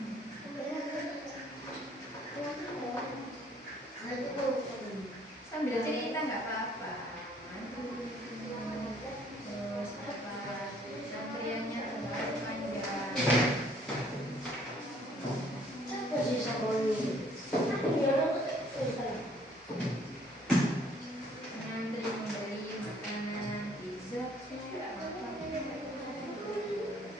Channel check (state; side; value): normal; both; correlation 0.61